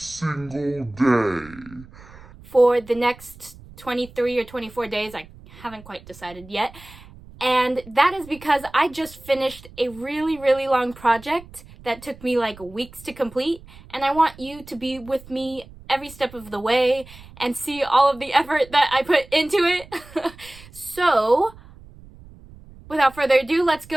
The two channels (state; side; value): noise; right; rumble, 20 dB below the sound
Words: day. For the next 23 or 24 days. I haven't quite decided yet. And that is because I just finished a really long project that took me like weeks to complete, and I want you to be with me every step of the way and see all of the effort that I put into it. So, without further ado, let's